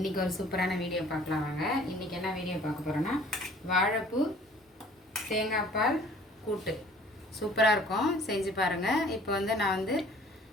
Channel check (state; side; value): normal; both; correlation 0.52